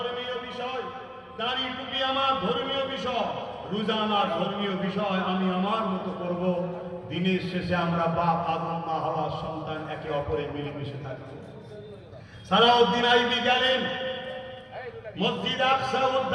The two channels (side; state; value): both; identical; correlation 1.00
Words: বিষয়, দাড়ি টুপি আমার ধর্মীয় বিষয়, রোজা আমার ধর্মীয় বিষয়, আমি আমার মতো করব। দিনের শেষে আমরা বাপ আদম মা হাওয়ার সন্তান, একে অপরে মিলেমিশে থাকবো। সালাউদ্দিন আইবি গেলেন মসজিদ আকসা